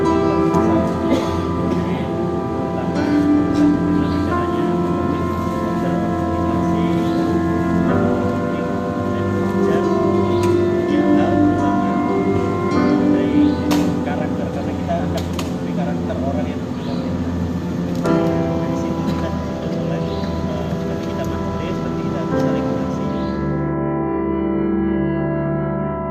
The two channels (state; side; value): identical; both; correlation 1.00